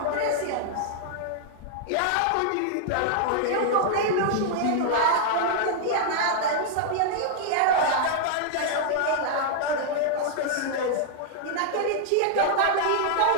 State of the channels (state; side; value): different; both; correlation -0.01